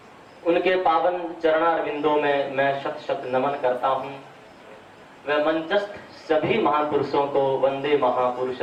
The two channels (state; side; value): identical; both; correlation 1.00